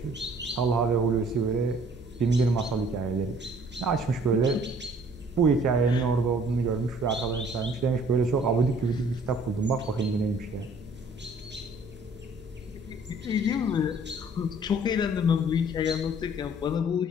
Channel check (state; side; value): normal; both; correlation 0.56